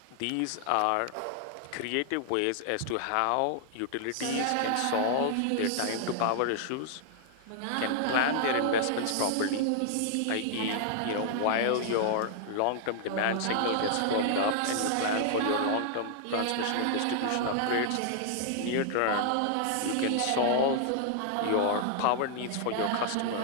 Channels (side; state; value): both; different; correlation -0.01